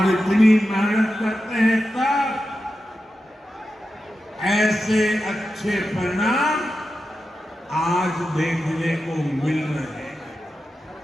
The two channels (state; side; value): normal; both; correlation 0.91